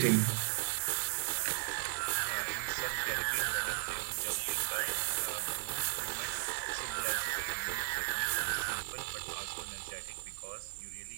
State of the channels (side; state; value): left; silent; digital silence